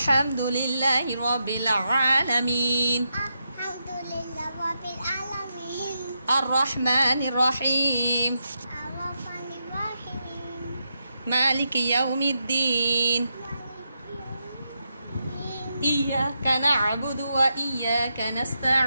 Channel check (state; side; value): inverted; both; correlation -0.85